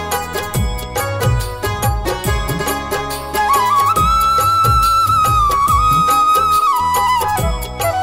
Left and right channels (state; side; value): identical; both; correlation 1.00